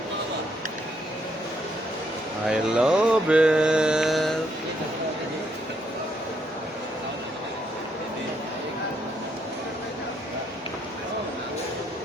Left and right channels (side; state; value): both; normal; correlation 0.73